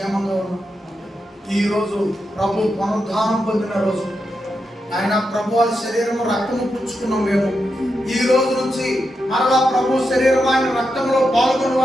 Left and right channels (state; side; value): normal; both; correlation 0.86